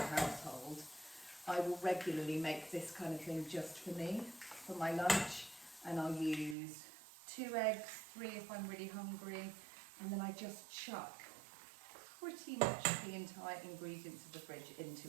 I will regularly make this kind of thing just for me, for my lunch, and I'll use 2 eggs, 3 if I'm really hungry, and then I just chuck pretty much the entire ingredients of the fridge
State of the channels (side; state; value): left; drops out; at 6.6 s